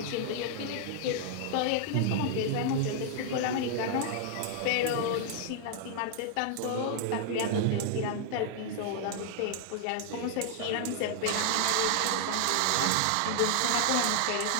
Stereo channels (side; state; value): both; different; correlation -0.01